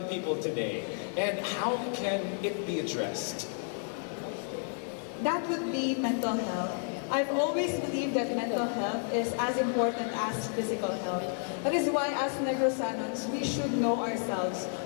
people today, and how can it be addressed? That would be mental health. I've always believed that mental health is as important as physical health. That is why as Negrosanons, we should know ourselves.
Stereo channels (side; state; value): right; silent; 57 dB below the other